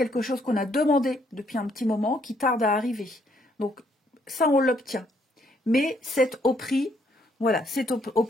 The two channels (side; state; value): both; normal; correlation 0.70